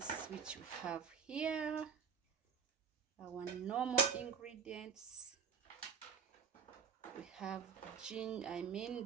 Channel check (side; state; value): left; quieter; 6.7 dB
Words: which we have here. Our normal ingredients, we have